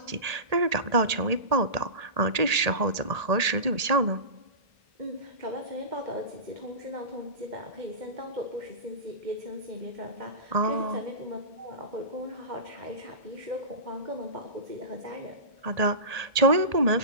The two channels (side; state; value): left; late; 1.8 ms